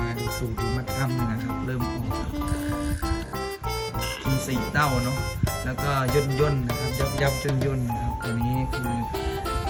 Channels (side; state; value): both; identical; correlation 1.00